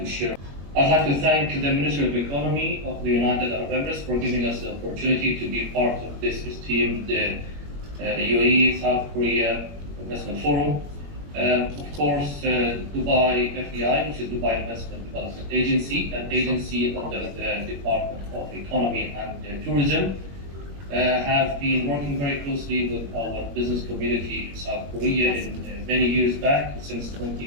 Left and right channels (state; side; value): late; left; 21 ms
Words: to thank the Ministry of Economy of the United Arab Emirates for giving us the opportunity to be part of this esteemed UAE South Korea Investment Forum. Of course, Dubai FDI, which is Dubai Investment Development Agency, an agency under the Department of Economy and Tourism, have been working very closely with our business community in South Korea in many years back, since